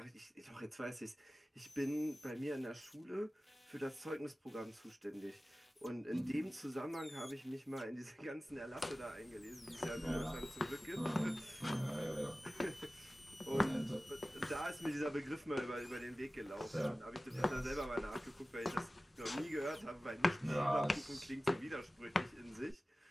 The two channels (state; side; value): normal; both; correlation 0.96